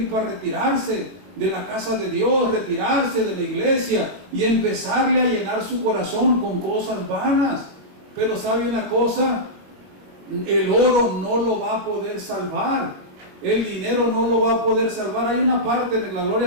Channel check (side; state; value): left; late; 21 ms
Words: para retirarse de la casa de Dios, retirarse de la iglesia y empezarle a llenar su corazón con cosas vanas. Pero ¿sabe una cosa? El oro no lo va a poder salvar, el dinero no lo va a poder salvar. Hay una parte de la gloria